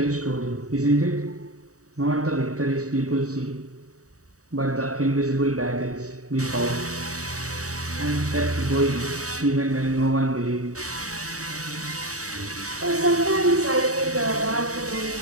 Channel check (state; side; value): late; left; 0.66 ms